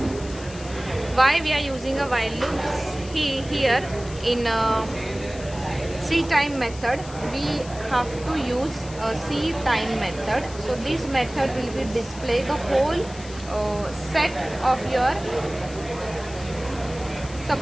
Why we are using a while loop? Here in C time method we have to use a C time method. So this method will be display the whole set of your,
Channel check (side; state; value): left; noise; hiss, 17 dB below the sound